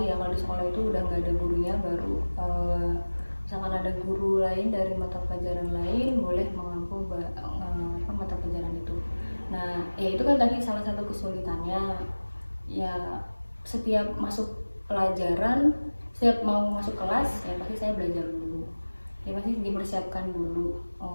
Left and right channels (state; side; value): inverted; both; correlation -1.00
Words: ya, kalau di sekolah itu udah nggak ada gurunya, baru misalkan ada guru lain dari mata pelajaran lain boleh mengampu mata pelajaran itu. Nah ya itu kan tadi salah satu kesulitannya ya, setiap masuk pelajaran, setiap mau masuk kelas ya pasti saya belajar dulu ya, pasti dipersiapkan dulu.